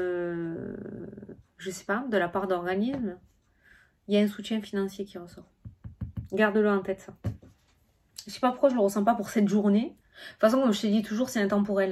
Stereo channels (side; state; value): both; identical; correlation 1.00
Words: je sais pas, de la part d'organismes. Il y a un soutien financier qui ressort. Garde-le en tête, ça. Je sais pas pourquoi je le ressens pas pour cette journée. De toute façon, comme je te dis toujours, c'est intemporel.